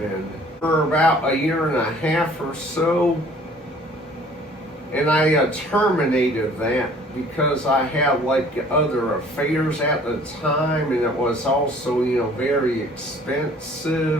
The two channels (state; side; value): normal; both; correlation 0.53